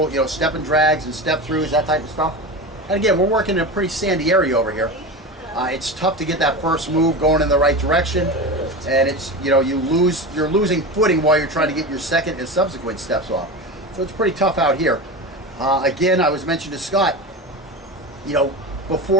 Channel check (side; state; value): both; normal; correlation 0.25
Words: you know, step and drags and step throughs, that type of stuff. And again, we're working in a pretty sandy area over here. It's tough to get that first move going in the right direction, and it's, you know, you're losing footing while you're trying to get your second and subsequent steps off. So it's pretty tough out here. Again, I was mentioning to Scott, you know,